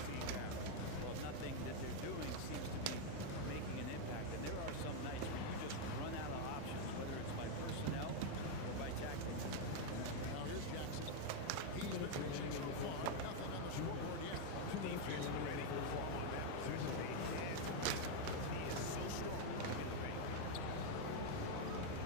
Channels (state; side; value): different; both; correlation 0.01